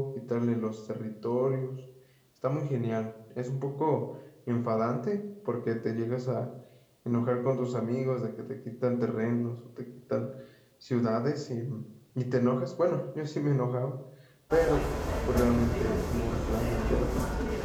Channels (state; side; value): identical; both; correlation 1.00